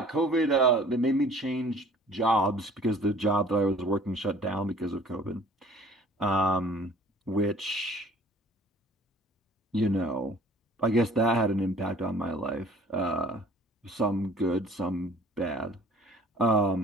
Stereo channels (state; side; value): normal; both; correlation 0.51